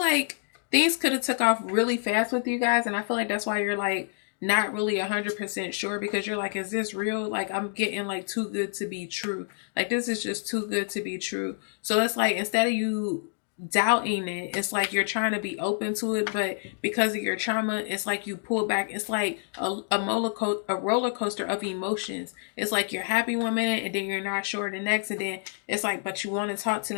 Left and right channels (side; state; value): right; silent; digital silence